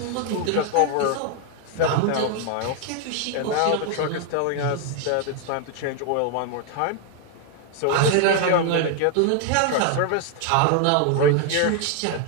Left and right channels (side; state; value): both; different; correlation 0.00